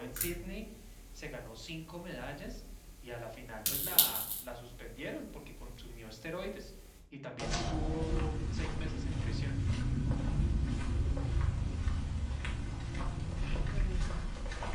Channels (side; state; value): both; identical; correlation 1.00